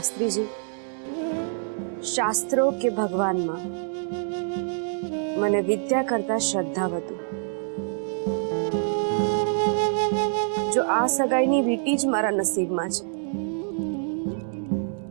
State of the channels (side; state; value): left; silent; 61 dB below the other